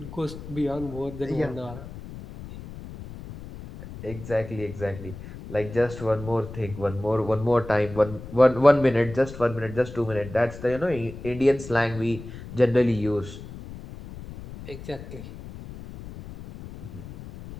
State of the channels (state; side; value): noise; left; rumble, 13 dB below the sound